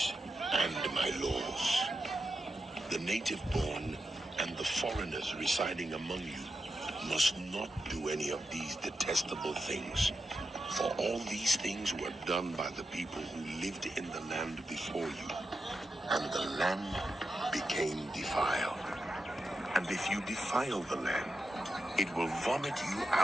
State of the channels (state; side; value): normal; both; correlation 0.88